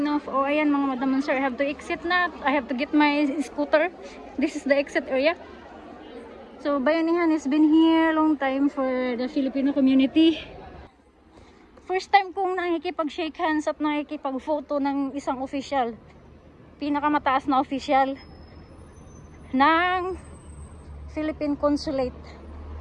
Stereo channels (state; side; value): identical; both; correlation 1.00